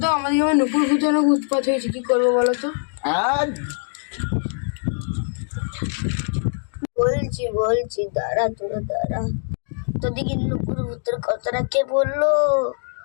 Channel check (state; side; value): silent; right; digital silence